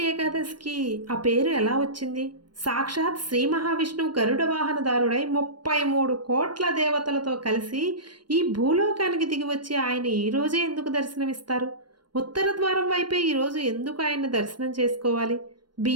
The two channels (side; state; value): left; late; 0.72 ms